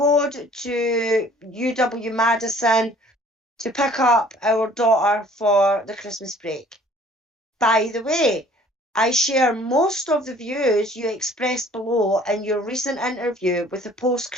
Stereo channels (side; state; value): both; normal; correlation 0.54